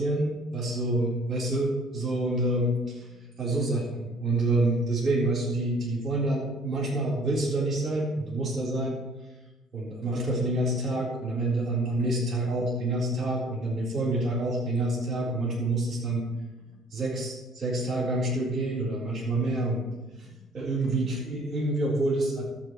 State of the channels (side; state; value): both; normal; correlation 0.55